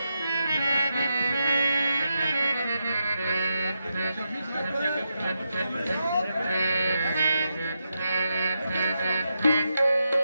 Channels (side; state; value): both; inverted; correlation -0.86